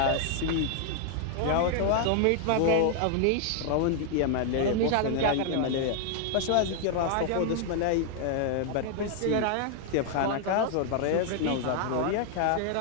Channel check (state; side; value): different; both; correlation 0.00